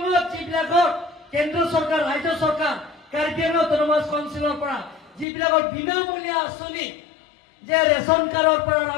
যিবিলাকৰ কেন্দ্ৰ চৰকাৰ ৰাজ্য চৰকাৰ কাৰ্বি আংলং অটোনমাছ কাউন্সিলৰ পৰা যিবিলাকৰ বিনামূলীয়া আঁচনি যে ৰেচন কাৰ্ডৰ পৰা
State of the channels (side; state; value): right; drops out; at 5.2 s